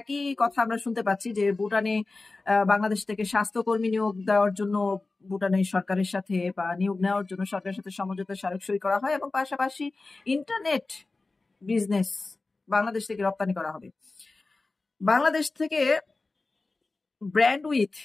কথা আমরা শুনতে পাচ্ছি যে ভুটানে বাংলাদেশ থেকে স্বাস্থ্যকর্মী নিয়োগ দেওয়ার জন্য ভুটানের সরকারের সাথে বা নিয়োগ নেওয়ার জন্য সরকারের সাথে সমঝোতা স্মারক সই করা হয় এবং পাশাপাশি ইন্টারনেট বিজনেস বাংলাদেশ থেকে রপ্তানি করা হবে। বাংলাদেশ থেকে ব্র্যান্ড উইথ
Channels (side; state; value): right; quieter; 3.5 dB